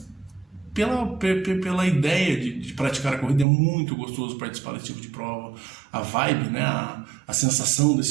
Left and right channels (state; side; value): drops out; left; at 3.5 s